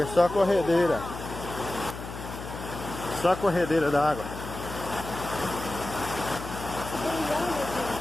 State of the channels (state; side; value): noise; left; hum, 10 dB below the sound